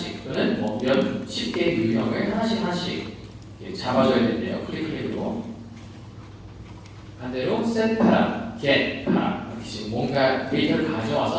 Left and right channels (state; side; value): identical; both; correlation 1.00